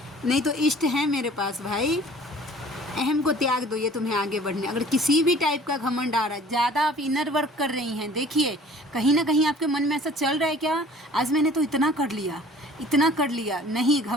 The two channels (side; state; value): both; normal; correlation 0.50